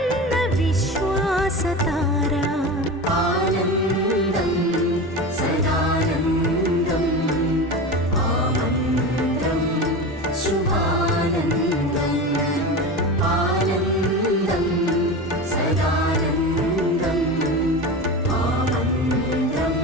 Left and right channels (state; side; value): normal; both; correlation 0.26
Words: സതാര ആനന്ദം സദാനന്ദം ആമന്ത്രം ശുഭാനന്ദം ആനന്ദം സദാനന്ദം ആമന്ത്രം